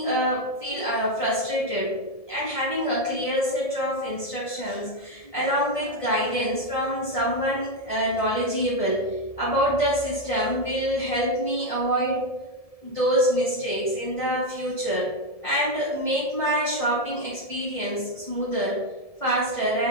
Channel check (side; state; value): right; late; 1.7 ms